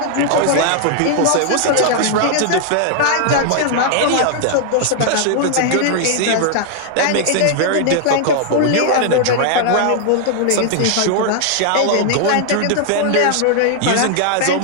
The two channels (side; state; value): both; different; correlation 0.00